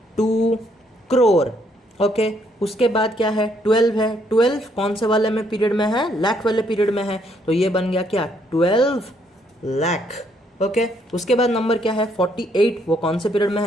करोड़। ओके, उसके बाद क्या है? 12 है। 12 कौन से वाले में पीरियड में है? लाख वाले पीरियड में है, तो ये बन गया क्या? 12 लाख। ओके, उसके बाद नंबर क्या है? 48। वो कौन से पीरियड में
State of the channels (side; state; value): both; normal; correlation 0.70